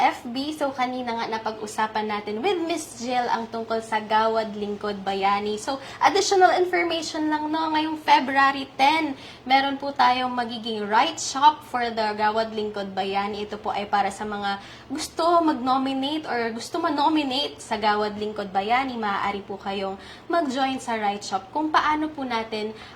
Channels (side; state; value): both; identical; correlation 1.00